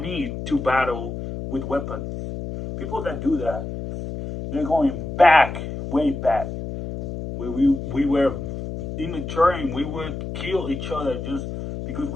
to battle with weapons. People that do that, they're going back, way back, where we were immature and we would kill each other just because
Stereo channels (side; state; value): left; noise; hum, 7 dB below the sound